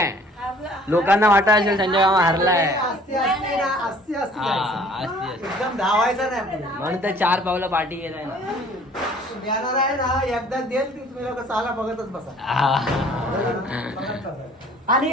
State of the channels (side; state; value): both; normal; correlation 0.54